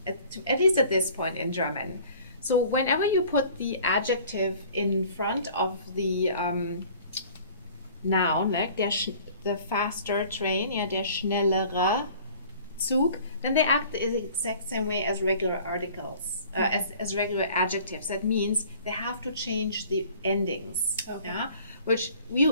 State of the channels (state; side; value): inverted; both; correlation -0.50